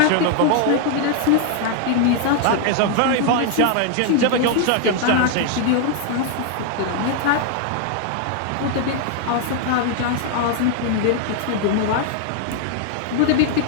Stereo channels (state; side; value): different; both; correlation 0.00